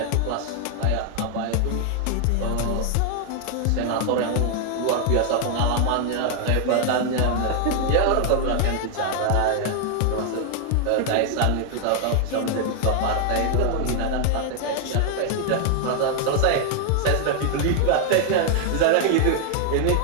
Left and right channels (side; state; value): both; different; correlation 0.00